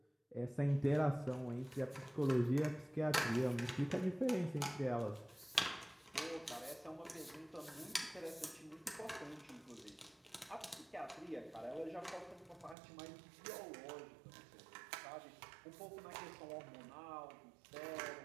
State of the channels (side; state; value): left; drops out; at 12.8 s